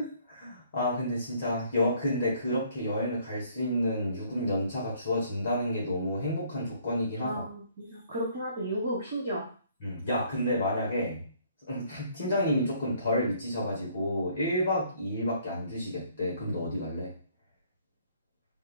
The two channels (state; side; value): inverted; both; correlation -0.62